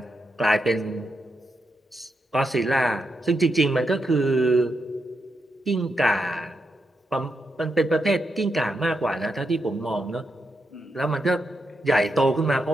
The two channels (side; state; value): both; normal; correlation 0.84